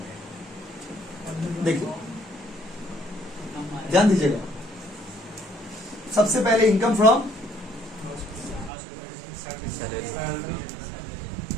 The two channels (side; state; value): left; drops out; at 8.7 s